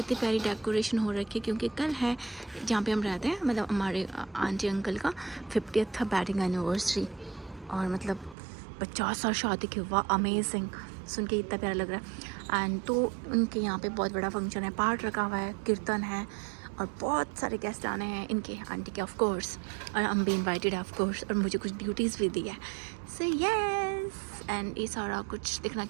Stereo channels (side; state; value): left; drops out; at 8.3 s